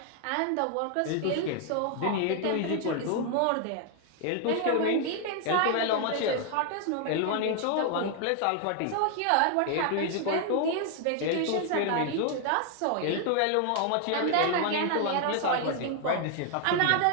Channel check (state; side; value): different; both; correlation 0.00